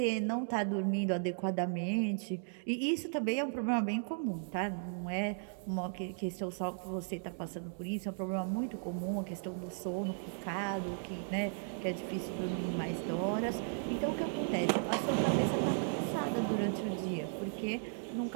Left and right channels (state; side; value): silent; left; digital silence